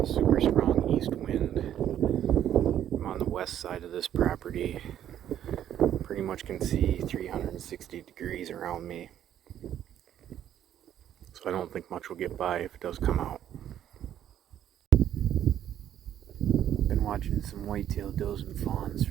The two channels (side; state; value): left; quieter; 10.7 dB